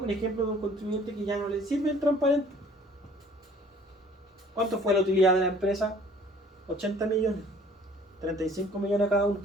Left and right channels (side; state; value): both; normal; correlation 0.54